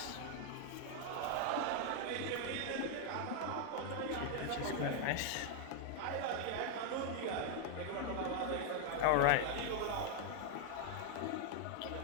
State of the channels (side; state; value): both; different; correlation 0.00